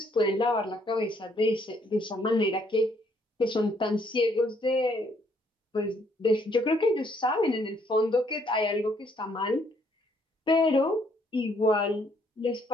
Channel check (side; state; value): both; normal; correlation 0.68